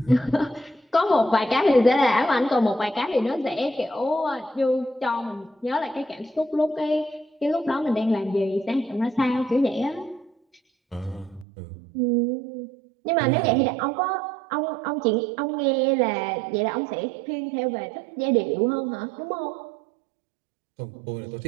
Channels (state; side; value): drops out; left; at 11.5 s